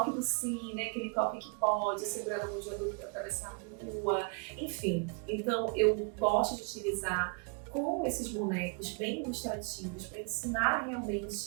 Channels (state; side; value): quieter; left; 35.6 dB